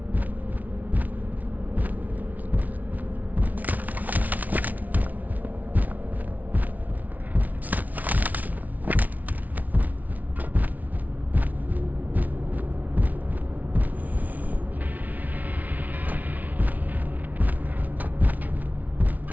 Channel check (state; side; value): late; left; 0.075 ms